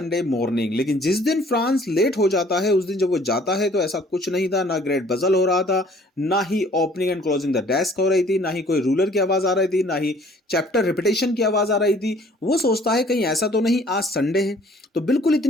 morning, लेकिन जिस दिन फ्रांस लेट हो जाता है उस दिन जब वो जाता है तो ऐसा कुछ नहीं था, ना ग्रेट बजल हो रहा था, ना ही opening and closing the desk हो रही थी, ना ही कोई रूलर की आवाज आ रही थी, ना ही चैप्टर रिपीटेशन की आवाज आ रही थी। वो सोचता है कहीं ऐसा तो नहीं आज संडे है, तो बिल्कुल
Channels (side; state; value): both; normal; correlation 0.56